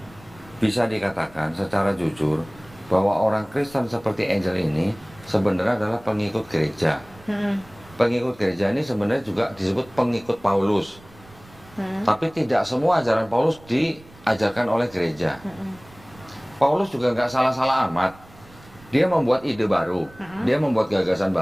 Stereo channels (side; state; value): right; noise; rumble, 24 dB below the sound